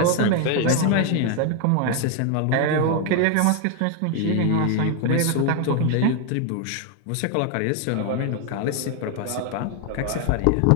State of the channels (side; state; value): both; different; correlation 0.01